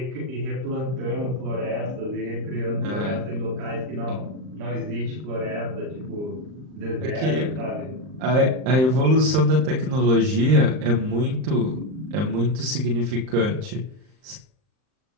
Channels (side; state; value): left; late; 39 ms